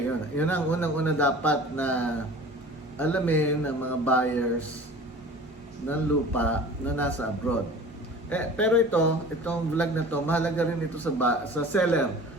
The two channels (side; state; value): both; normal; correlation 0.42